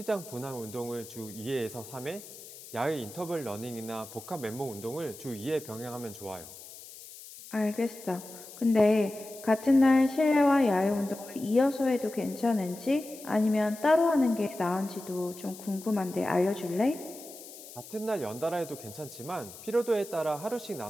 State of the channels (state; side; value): noise; left; hiss, 16 dB below the sound